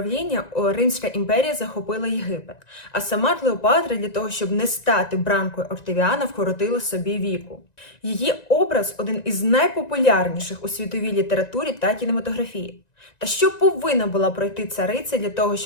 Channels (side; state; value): right; late; 1.9 ms